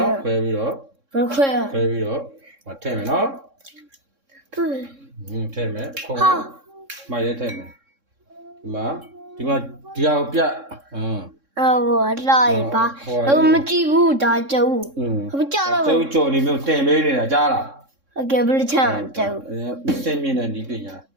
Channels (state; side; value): late; left; 3.6 ms